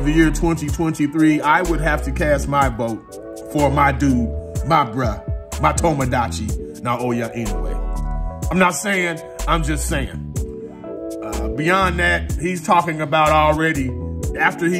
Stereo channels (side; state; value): both; identical; correlation 1.00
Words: the Year 2023. I would have to cast my vote for my dude, my bruh, my Tomodachi, Naoya Inoue. I'm not saying, I'm just saying. Beyond that, he's talking about already, after